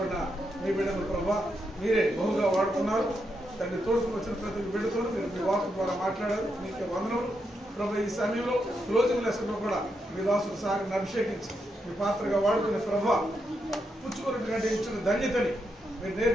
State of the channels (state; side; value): normal; both; correlation 0.83